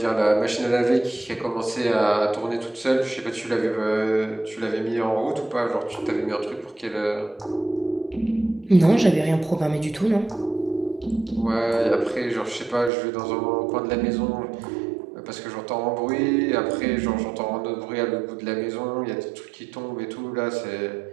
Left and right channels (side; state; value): left; drops out; at 12.9 s